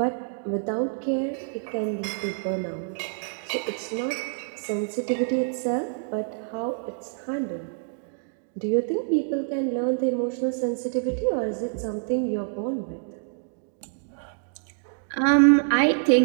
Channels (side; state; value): left; silent; digital silence